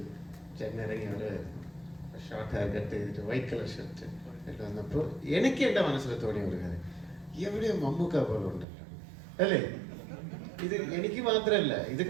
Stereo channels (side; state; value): left; drops out; at 8.7 s